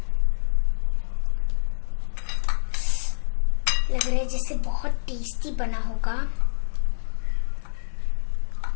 लग रहा है जैसे बहुत टेस्टी बना होगा।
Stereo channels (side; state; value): right; silent; digital silence